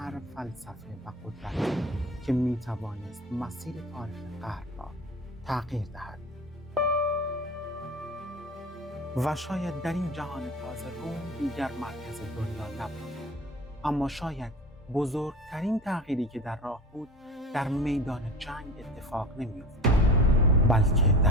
فلسفه و قدرت که میتوانست مسیر تاریخ غرب را تغییر دهد. و شاید در این جهان تازه روم دیگر مرکز دنیا نبود، اما شاید بزرگترین تغییری که در راه بود در میدان جنگ اتفاق نمی‌افتاد، بلکه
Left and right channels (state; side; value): normal; both; correlation 0.36